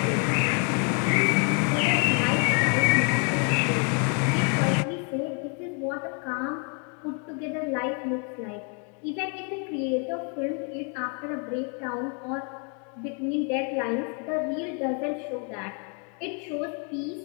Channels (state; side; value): quieter; right; 39.0 dB